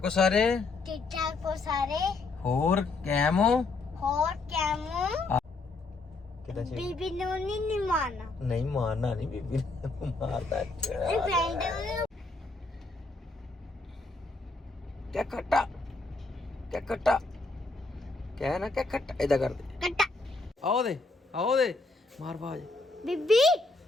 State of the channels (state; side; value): quieter; right; 3.5 dB